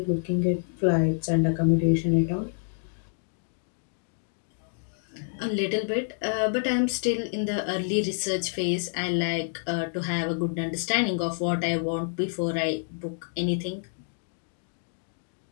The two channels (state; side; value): silent; right; digital silence